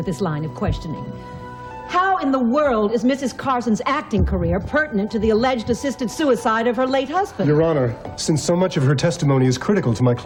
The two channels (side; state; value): both; identical; correlation 1.00